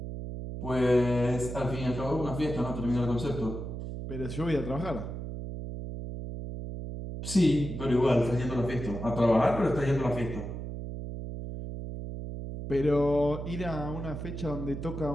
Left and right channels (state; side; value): noise; right; hum, 7 dB below the sound